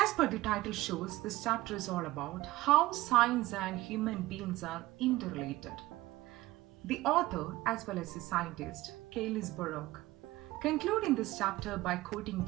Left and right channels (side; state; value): left; quieter; 18.0 dB